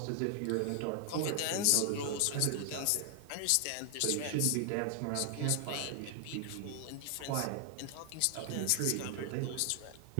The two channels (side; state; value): both; different; correlation 0.00